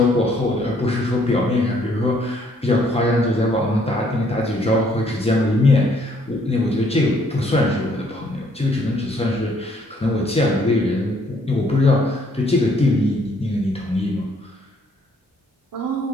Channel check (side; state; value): both; normal; correlation 0.65